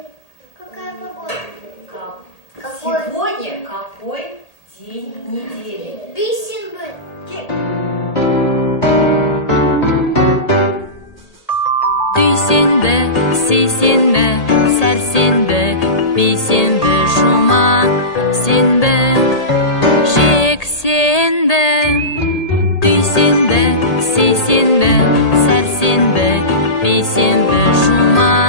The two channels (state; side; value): late; right; 1.8 ms